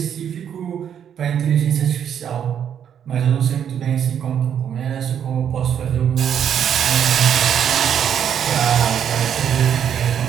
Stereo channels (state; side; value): quieter; left; 8.8 dB